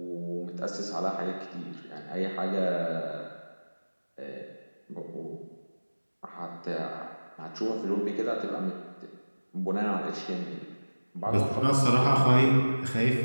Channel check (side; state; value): both; inverted; correlation -1.00